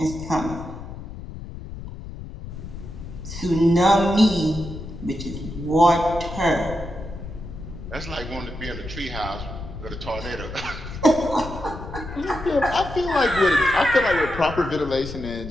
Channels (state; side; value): noise; left; rumble, 11 dB below the sound